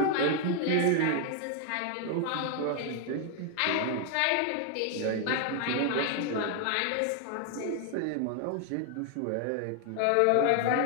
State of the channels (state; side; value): different; both; correlation 0.00